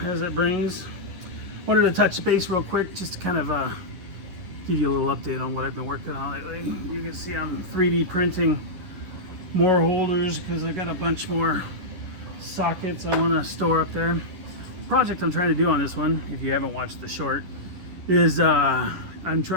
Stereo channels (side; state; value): left; late; 11 ms